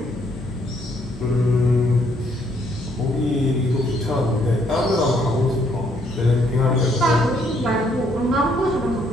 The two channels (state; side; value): normal; both; correlation 0.69